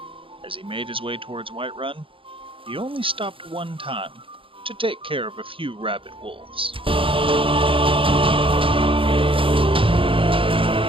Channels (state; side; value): late; left; 0.26 ms